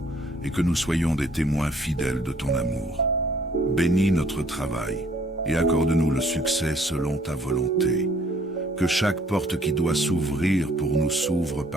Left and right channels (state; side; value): normal; both; correlation 0.61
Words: et que nous soyons des témoins fidèles de ton amour. Bénis notre travail et accorde-nous le succès selon ta volonté. Que chaque porte qui doit s'ouvrir pour nous s'ouvre